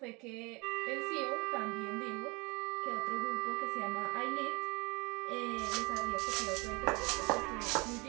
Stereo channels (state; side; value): quieter; left; 27.2 dB